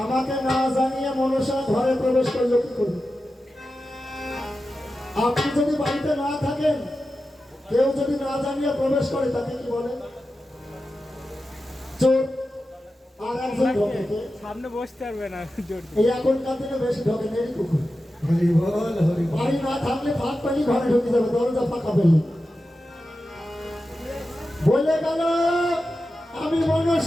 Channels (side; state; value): both; normal; correlation 0.92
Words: আমাকে না জানিয়ে মনসা ঘরে প্রবেশ করলো কি করে? আপনি যদি বাড়িতে না থাকেন, কেউ যদি না জানিয়ে প্রবেশ করে তাকে কি বলে? চোর। আর একজন ঢোকে কে? সামনে বসতে পারবে না। এই এখনকার দিনে বেশি ঢোকে নেই কুকুর। বাড়ি না থাকলে ফাঁক পানি ঘরে ঢুকে যাবে, দরজা ফাঁকা পেলে। বলে গেল আমি